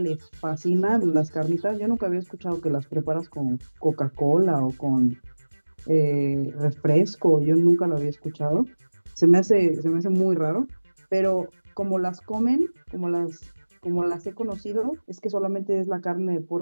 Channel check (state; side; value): inverted; both; correlation -1.00